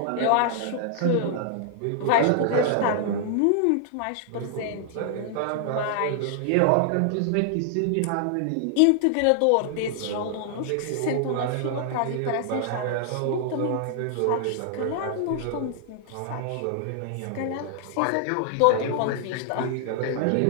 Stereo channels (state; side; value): different; both; correlation -0.01